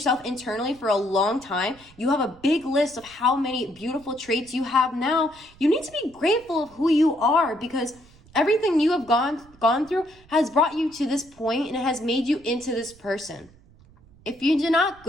internally for a long time, you have a big list of how many beautiful traits you have now. You need to be grateful of who you are, because everything you have gone through has brought you to this point, and it has made you into this person. If you did not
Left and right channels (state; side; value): noise; right; rumble, 26 dB below the sound